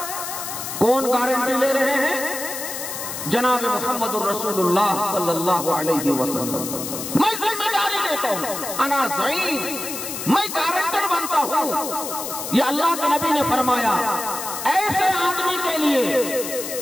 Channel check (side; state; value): left; noise; hiss, 6 dB below the sound